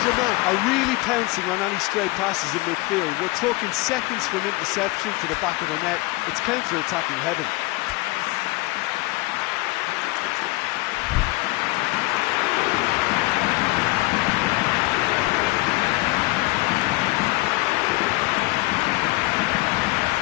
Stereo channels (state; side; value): quieter; right; 22.0 dB